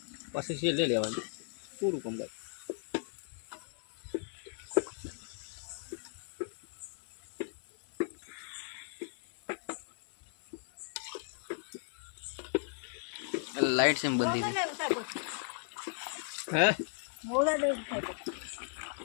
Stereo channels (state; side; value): silent; right; 53 dB below the other